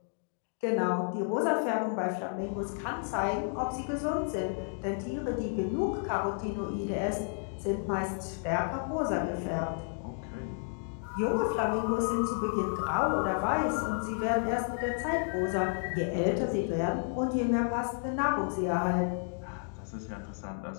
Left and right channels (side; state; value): right; silent; 57 dB below the other